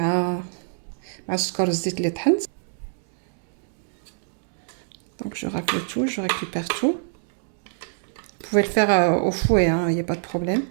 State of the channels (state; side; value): silent; left; digital silence